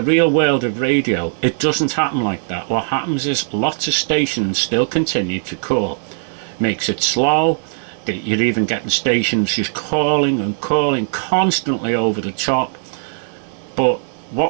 real world of radio, it doesn't happen like that. What happens is lots of stations still continue to call. Makes it slow. You're even getting stations just calling and calling constantly over the top. But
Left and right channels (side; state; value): left; silent; digital silence